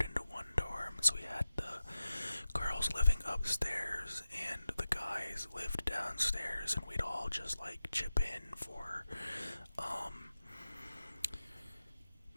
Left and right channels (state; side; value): inverted; both; correlation -0.92